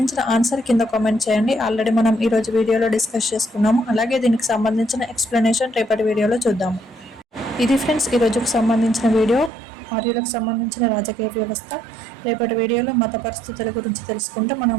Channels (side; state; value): left; drops out; at 9.5 s